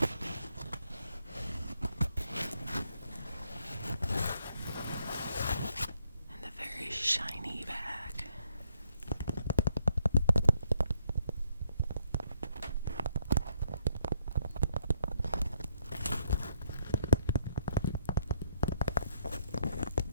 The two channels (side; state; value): both; inverted; correlation -0.72